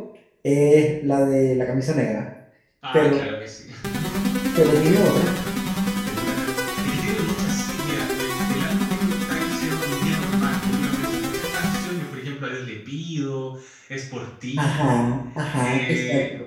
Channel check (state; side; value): identical; both; correlation 1.00